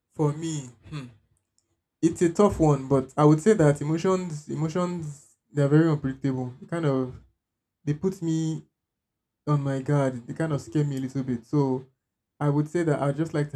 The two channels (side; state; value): both; identical; correlation 1.00